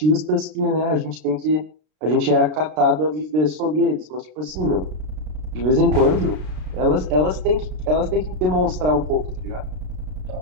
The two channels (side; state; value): left; late; 33 ms